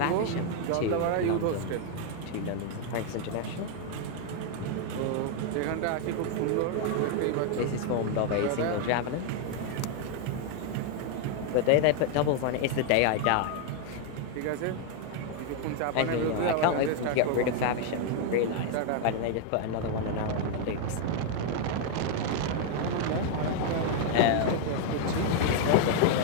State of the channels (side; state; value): both; different; correlation 0.01